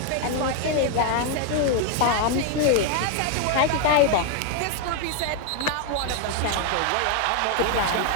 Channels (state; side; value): different; both; correlation 0.00